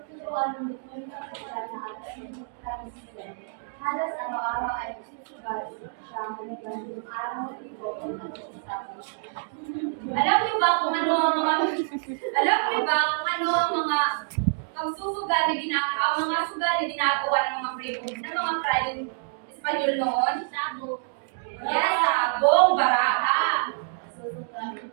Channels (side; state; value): left; silent; digital silence